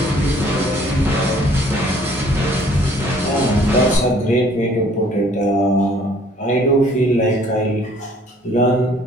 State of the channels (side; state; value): both; normal; correlation 0.58